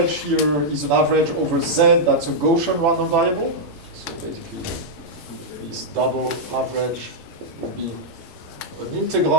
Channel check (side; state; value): both; normal; correlation -0.05